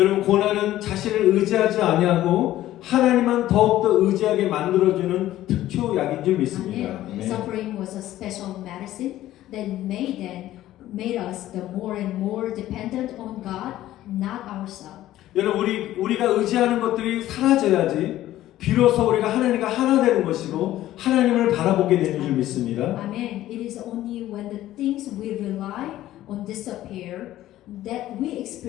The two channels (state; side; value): quieter; right; 14.2 dB